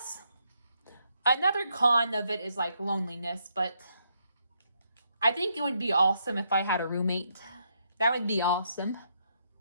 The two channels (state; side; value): inverted; both; correlation -0.76